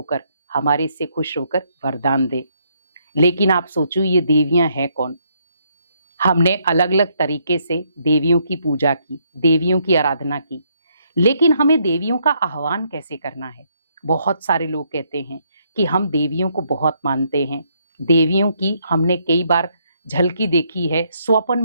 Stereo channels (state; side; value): inverted; both; correlation -0.73